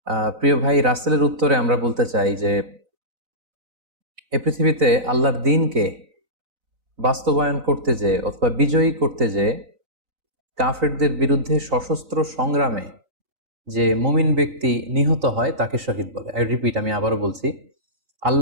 প্রিয় ভাই, রাসেলের উত্তরে আমরা বলতে চাই যে এ পৃথিবীতে আল্লাহর দ্বীনকে বাস্তবায়ন করতে যেয়ে অথবা বিজয়ী করতে যেয়ে কাফেরদের বিরুদ্ধে সশস্ত্র সংগ্রামে যে মুমিন ব্যক্তি নিহত হয় তাকে শহীদ বলে। আমি আবারও বলছি,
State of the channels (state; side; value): late; left; 4.0 ms